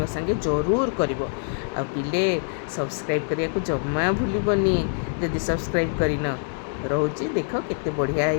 संगे जरूर कर पिले सब्सक्राइब करने को जमा भूलबनी जदि सब्सक्राइब करन रोचे देख केते बढ़िया है।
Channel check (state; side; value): silent; right; digital silence